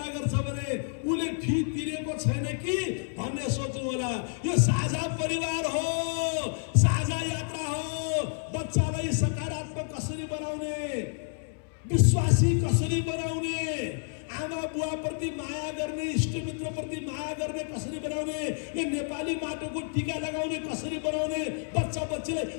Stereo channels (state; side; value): silent; right; 58 dB below the other